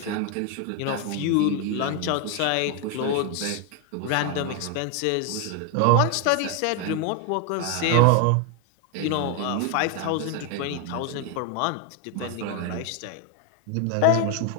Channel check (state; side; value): different; both; correlation 0.01